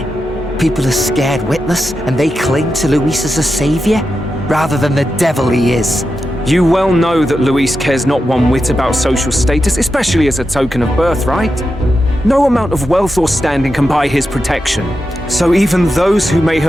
people are scared witless, and they cling to Luis as a savior, rather than the devil he is. You well know that Luis cares not one whit about social status, especially as a token of birthright. No amount of wealth or standing can buy his protection. So even those who may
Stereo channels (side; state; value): both; normal; correlation 0.89